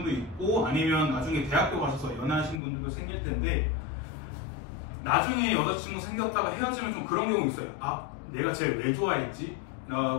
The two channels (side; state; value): right; drops out; at 2.6 s